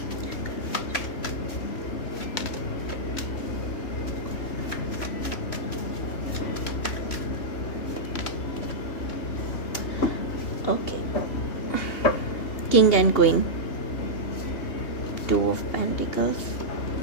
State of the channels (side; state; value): right; late; 2.8 ms